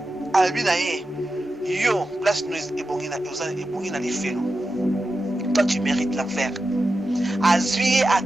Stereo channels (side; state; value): both; normal; correlation 0.91